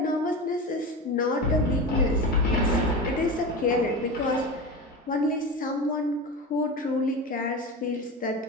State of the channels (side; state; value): both; normal; correlation 0.25